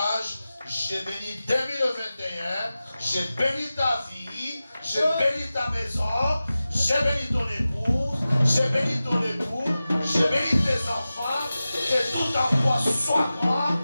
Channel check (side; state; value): both; inverted; correlation -0.95